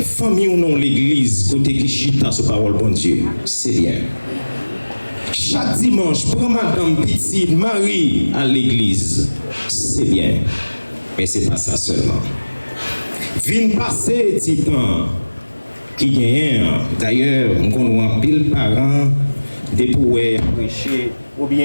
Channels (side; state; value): both; inverted; correlation -1.00